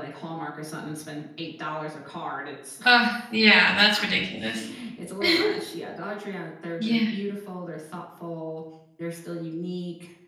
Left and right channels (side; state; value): both; identical; correlation 1.00